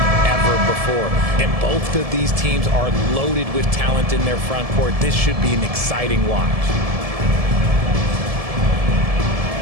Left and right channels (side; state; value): left; late; 1.7 ms